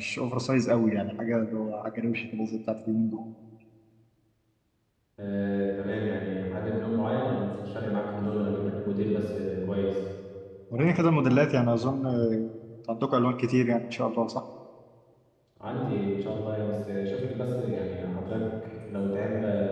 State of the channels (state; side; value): identical; both; correlation 1.00